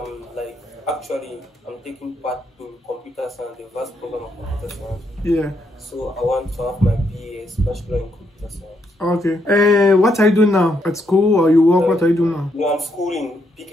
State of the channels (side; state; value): both; normal; correlation 0.77